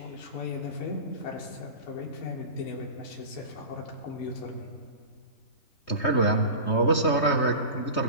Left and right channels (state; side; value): late; right; 3.2 ms